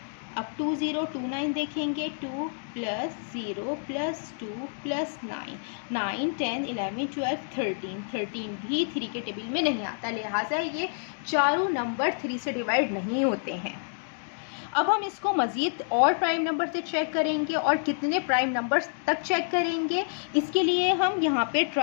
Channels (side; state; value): right; silent; digital silence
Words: अब 2029 देखेंगे। 2 + 0 + 2 + 9 9 10 11 12 13 भी 3 के टेबल में नहीं आता, लिहाजा ये चारों नंबर 3 से डिवाइड नहीं होते हैं। अब हम इसको मज़ीद और प्राइम नंबर से चेक करेंगे, और कितने प्राइम नंबर्स तक चेक करेंगे, इसके लिए हम यहाँ पे